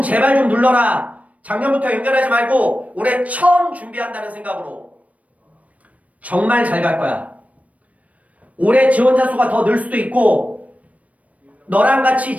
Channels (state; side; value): late; left; 0.068 ms